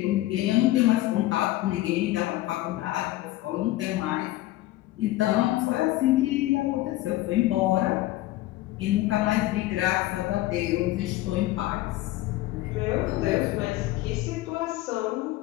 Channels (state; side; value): quieter; right; 16.6 dB